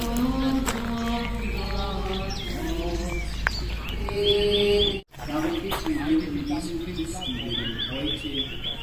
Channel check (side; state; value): both; identical; correlation 1.00